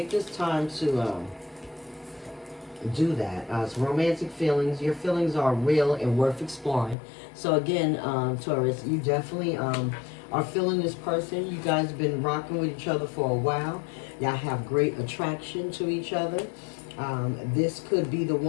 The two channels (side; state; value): right; drops out; at 7.0 s